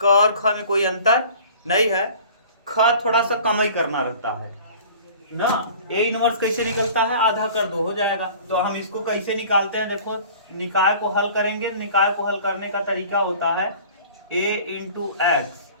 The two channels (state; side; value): inverted; both; correlation -0.45